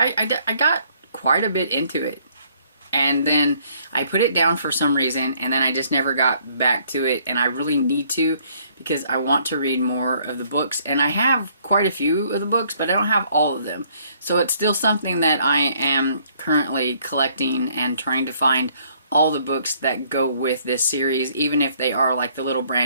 got quite a bit into it. And then I put it down for some reason, and then I just never got back to it. And I really need to, because I want to read more of the books. And I have quite a few of the books, but I don't have all of them. So it's still something that I am currently collecting and trying to find all the books that go with this series, even if they are the little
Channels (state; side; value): inverted; both; correlation -0.64